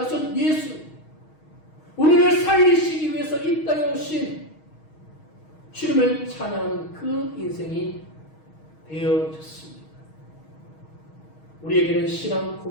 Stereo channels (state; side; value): late; right; 6.4 ms